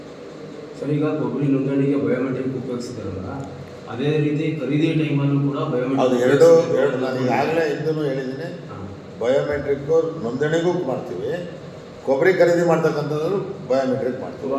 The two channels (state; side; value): identical; both; correlation 1.00